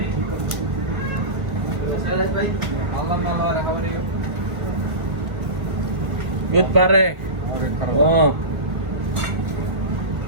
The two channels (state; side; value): late; left; 1.6 ms